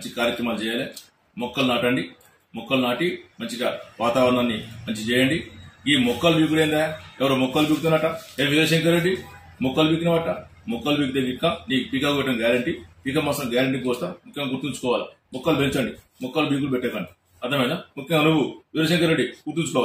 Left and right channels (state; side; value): identical; both; correlation 1.00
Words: కార్యక్రమాలు చేయాలి. మొక్కలు నాటండి, మొక్కలు నాటి మంచిగా వాతావరణాన్ని మంచి చేయండి. ఈ మొక్కలు బీకుడైందా? ఎవరో మొక్కలు బీకుతున్నట, వీరశంకర్ రెడ్డి మొక్కలు బీకినవట. మొక్కలు బీకితే విక్క నీకు పీకా కొట్టడం గ్యారంటీ, పీక మాసం గ్యారంటీ కోస్తా. ముఖ్యంగా గుర్తుంచుకోవాలి, మొక్కలు పెంచండి, మొక్కలు బీకులు పెట్టకండి. అర్థమైనా? ముఖ్యంగా నువ్వు వీరశంకర్ రెడ్డి